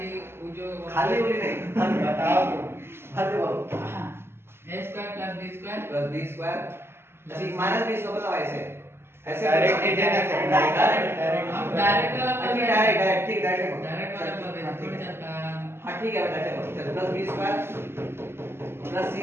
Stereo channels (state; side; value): late; left; 0.12 ms